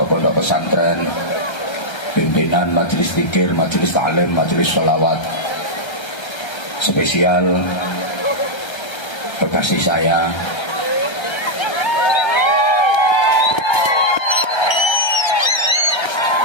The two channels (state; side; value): late; right; 1.3 ms